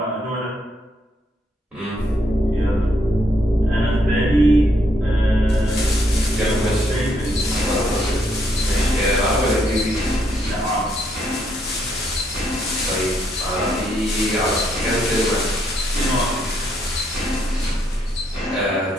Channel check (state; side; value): normal; both; correlation 0.74